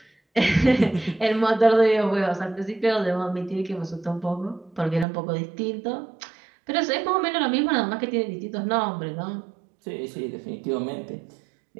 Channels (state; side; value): drops out; left; at 5.1 s